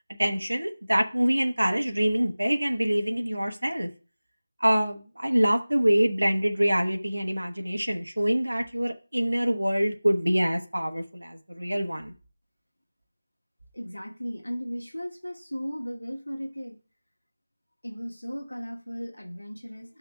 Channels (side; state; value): both; inverted; correlation -0.99